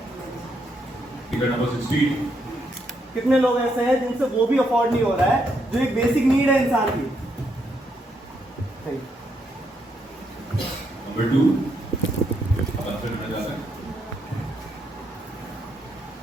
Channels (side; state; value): both; normal; correlation 0.77